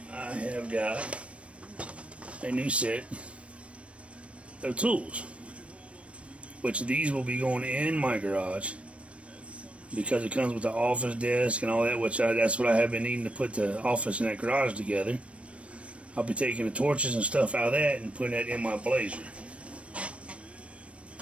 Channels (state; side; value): late; left; 0.062 ms